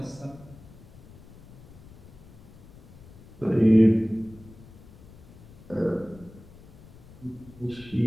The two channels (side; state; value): left; noise; rumble, 20 dB below the sound